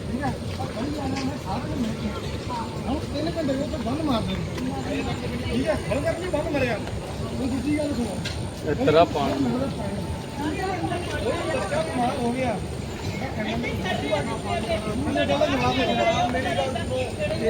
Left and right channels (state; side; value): identical; both; correlation 1.00